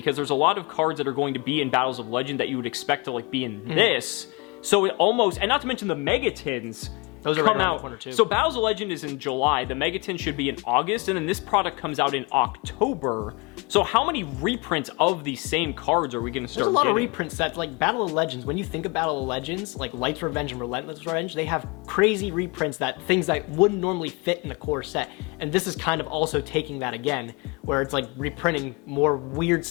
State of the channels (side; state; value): right; quieter; 28.5 dB